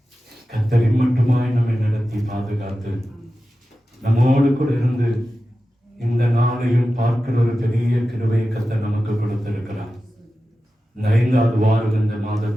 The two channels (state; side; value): normal; both; correlation 0.93